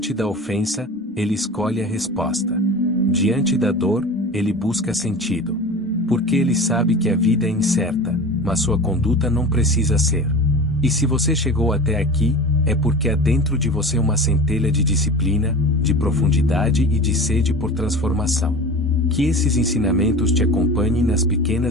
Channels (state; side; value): normal; both; correlation 0.34